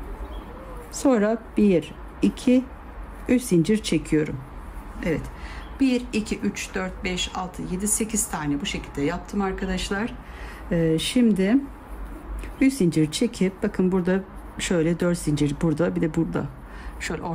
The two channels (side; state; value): both; identical; correlation 1.00